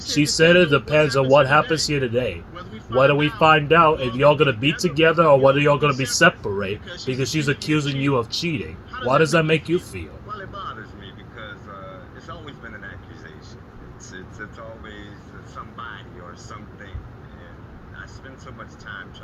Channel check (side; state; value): both; identical; correlation 1.00